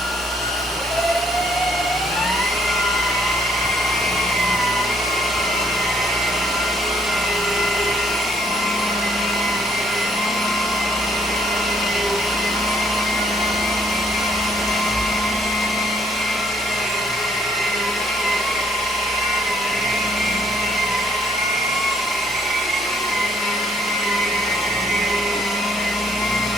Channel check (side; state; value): both; normal; correlation 0.67